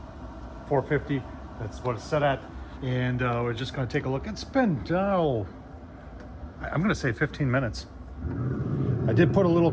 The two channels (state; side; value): identical; both; correlation 1.00